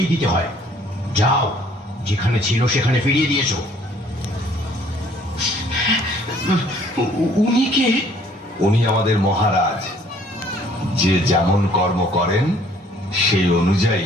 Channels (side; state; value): both; normal; correlation 0.59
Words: দিতে হয়। যাও, যেখানে ছিল সেখানে ফিরিয়ে দিয়েছো। উনি কে? উনি আমাদের মহারাজ। যে যেমন কর্ম করেন সেই